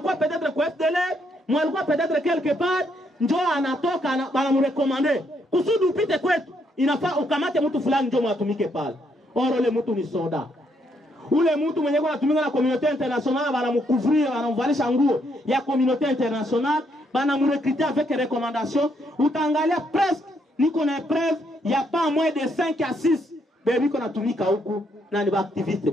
peut-être kwa FDLR, mwenye alikuwa peut-être quelque part, njo anatoka banamurekomande. Kusudi upite kwetu, inafaa ukamate mtu fulani njo mwatumike pale. Oro ule mtu ni soda. Ule mtu mwenye kwa natumika na communauté internationale banamukuvria, banamvalisha nguo ya communauté internationale, banamurekriter avec recommandation. Utaangalia presque niko na preuve ya pas moins de 5 à 6 bebi ko natumika huku na ni ba activiste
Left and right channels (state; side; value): normal; both; correlation 0.74